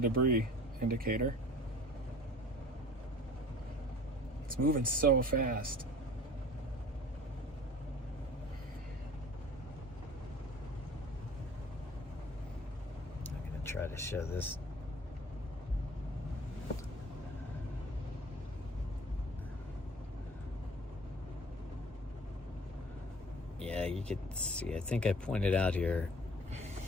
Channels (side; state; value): both; normal; correlation 0.47